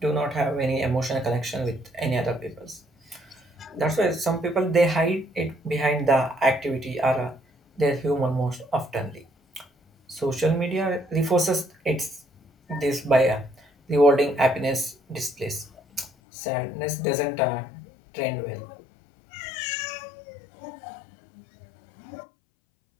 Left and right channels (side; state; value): right; drops out; at 16.1 s